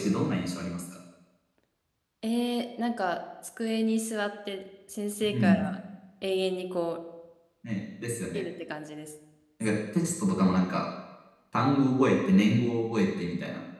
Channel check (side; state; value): both; identical; correlation 1.00